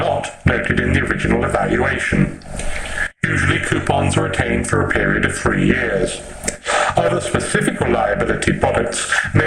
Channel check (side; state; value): both; identical; correlation 1.00